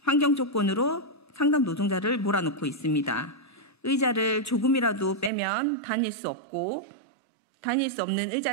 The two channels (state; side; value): drops out; left; at 5.3 s